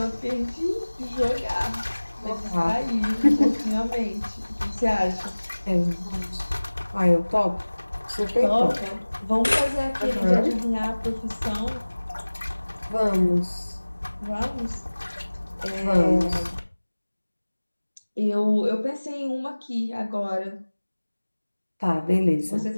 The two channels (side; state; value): both; inverted; correlation -1.00